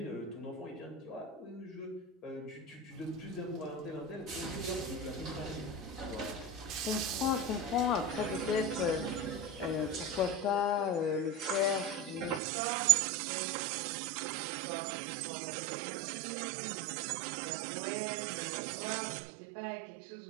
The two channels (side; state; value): left; drops out; at 12.4 s